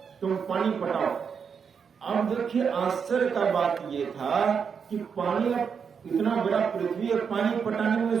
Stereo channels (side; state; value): left; quieter; 6.5 dB